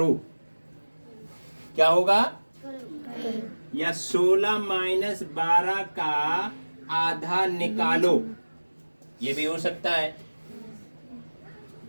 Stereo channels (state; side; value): inverted; both; correlation -1.00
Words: क्या होगा? या 16 माइनस 12 का आधा निकालो, ये भी हो सकता है।